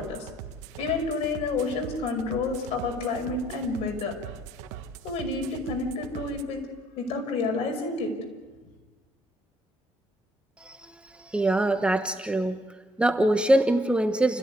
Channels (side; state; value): both; normal; correlation 0.66